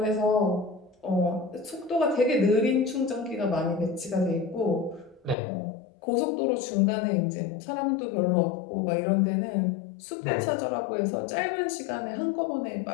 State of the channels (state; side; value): drops out; right; at 5.4 s